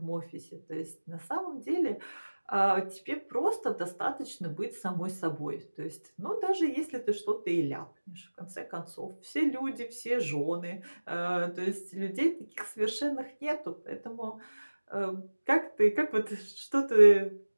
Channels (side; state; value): both; inverted; correlation -1.00